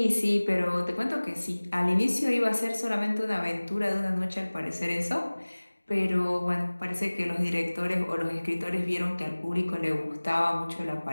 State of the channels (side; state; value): both; inverted; correlation -1.00